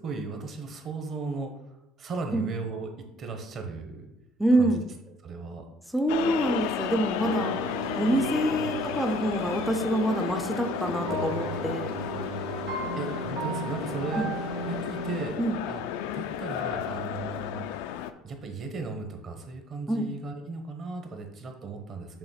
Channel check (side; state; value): both; normal; correlation 0.56